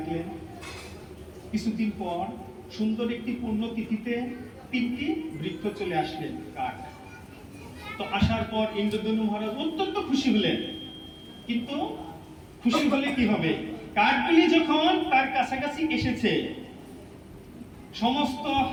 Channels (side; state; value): both; identical; correlation 1.00